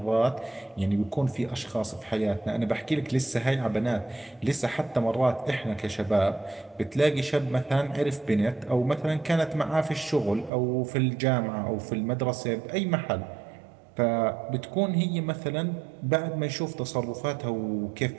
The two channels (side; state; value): left; drops out; at 10.5 s